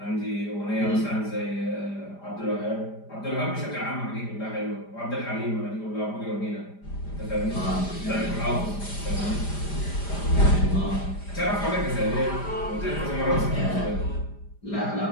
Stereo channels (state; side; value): late; right; 5.0 ms